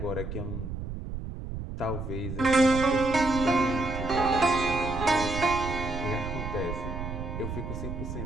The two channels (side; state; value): right; noise; rumble, 6 dB below the sound